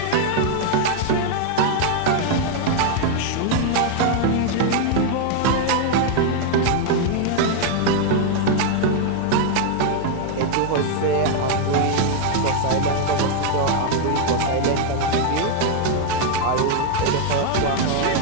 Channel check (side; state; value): both; different; correlation 0.00